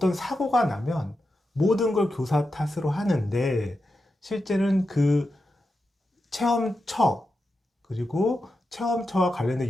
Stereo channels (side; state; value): both; normal; correlation 0.89